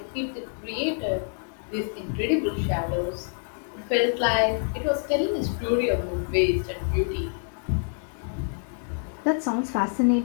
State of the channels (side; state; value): right; silent; 60 dB below the other